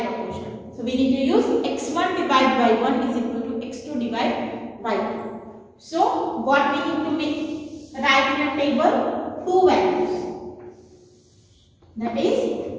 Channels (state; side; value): identical; both; correlation 1.00